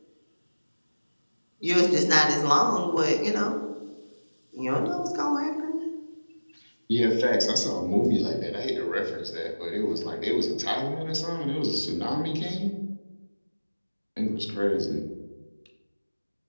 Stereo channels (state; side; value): inverted; both; correlation -1.00